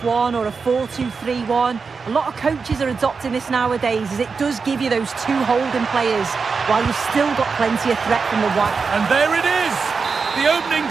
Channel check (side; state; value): left; quieter; 5.0 dB